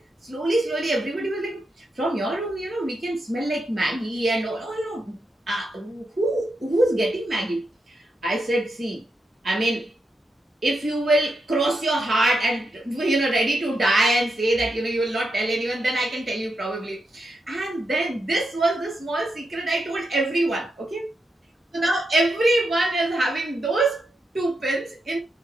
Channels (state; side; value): normal; both; correlation 0.85